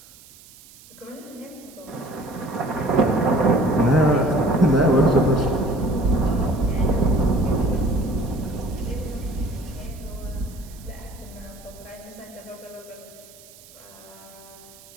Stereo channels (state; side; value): noise; right; hiss, 22 dB below the sound